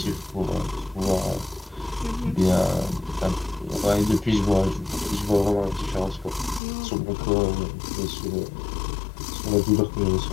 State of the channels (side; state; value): right; drops out; at 6.6 s